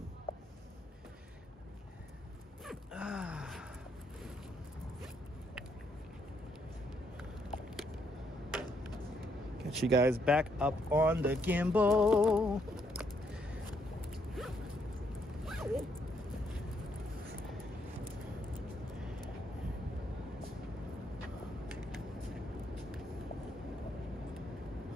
Get you guys back up on the gimbal.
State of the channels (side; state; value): both; normal; correlation 0.73